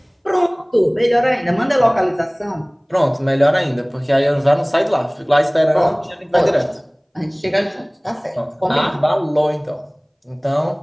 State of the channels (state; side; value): identical; both; correlation 1.00